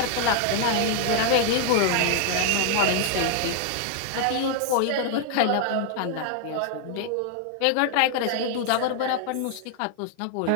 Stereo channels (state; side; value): different; both; correlation 0.00